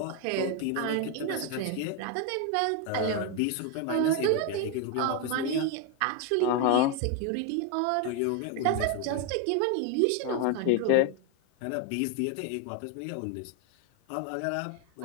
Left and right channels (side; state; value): both; different; correlation 0.01